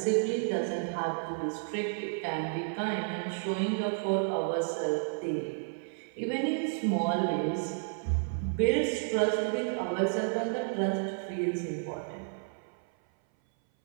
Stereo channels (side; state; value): left; silent; 57 dB below the other